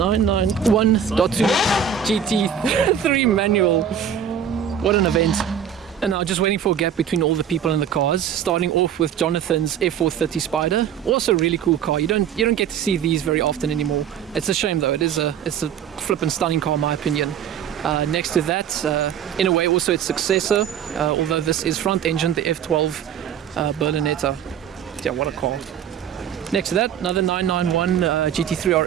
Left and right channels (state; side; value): quieter; left; 8.6 dB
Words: GT3 manual. What an event. And now just waiting for a gap between all the people in the cars, starting off with Jonathan's F430 Spider. Also a really cool car. You don't get to see these very often anymore. It's a shame though. It's a flippin' stunning car in my opinion. Next to that, in a way also its successor, although this is front engine, the F12 Berlinetta. Yeah, what a car. Next to that, another 991 GT3